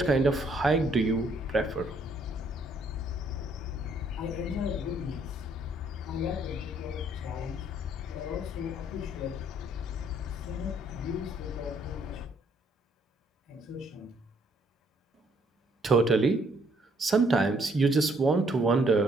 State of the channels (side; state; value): both; normal; correlation 0.66